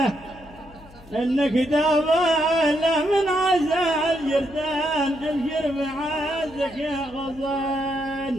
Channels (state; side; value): noise; left; hum, 22 dB below the sound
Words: انك تابعنا من عزال جردان ابشر بعزك يا